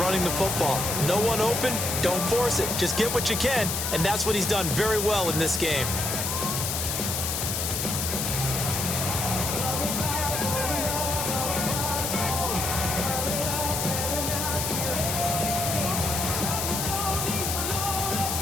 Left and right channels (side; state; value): left; noise; hiss, 1 dB below the sound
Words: the football. No one open, don't force it. Just get what you can, and that's what he's done very well in this game.